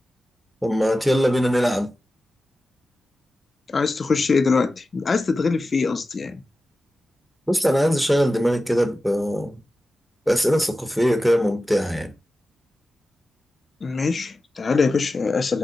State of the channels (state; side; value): normal; both; correlation 0.94